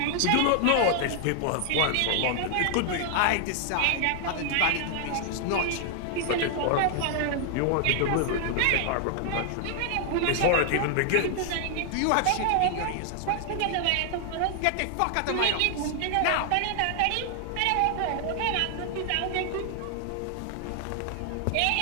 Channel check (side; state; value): both; different; correlation 0.00